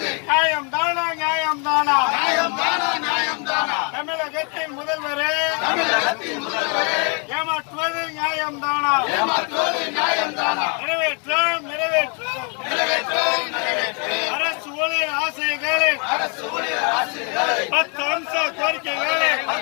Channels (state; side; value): quieter; right; 36.8 dB